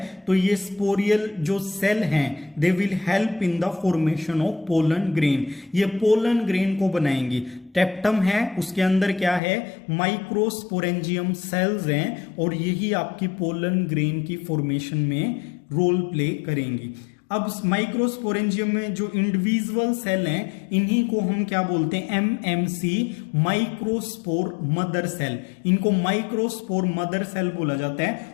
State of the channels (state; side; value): drops out; right; at 9.4 s